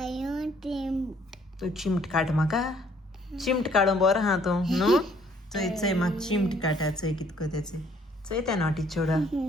तू चिमट काड म्हाका चिमट काडून बरो हा तूं न्हू चोय चोय म्हाका चिमट काडा चोय कितको तेचे चोय त्या नॉटी चोडा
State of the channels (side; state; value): both; normal; correlation 0.63